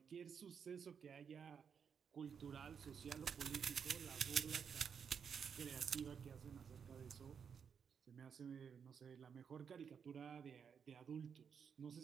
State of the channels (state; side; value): quieter; left; 6.9 dB